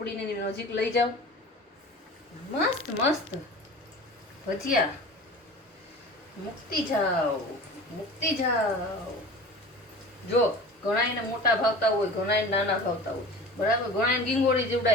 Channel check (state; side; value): normal; both; correlation 0.38